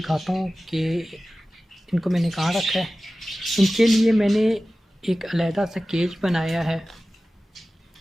हूँ कि इनको मैंने कहाँ रखा है। इनके लिए मैंने एक अलहदा सा केज बनाया है।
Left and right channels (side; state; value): both; normal; correlation 0.96